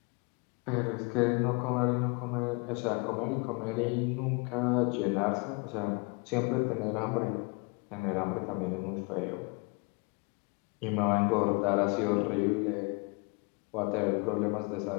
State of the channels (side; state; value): right; quieter; 30.7 dB